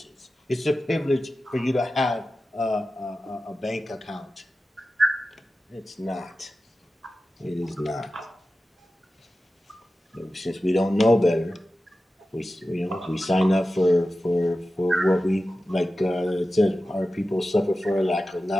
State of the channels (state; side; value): normal; both; correlation 0.94